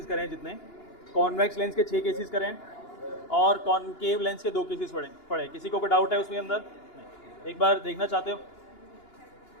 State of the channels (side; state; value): right; late; 2.9 ms